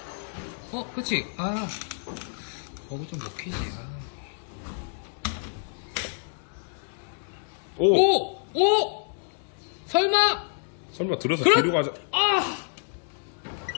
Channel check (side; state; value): right; silent; digital silence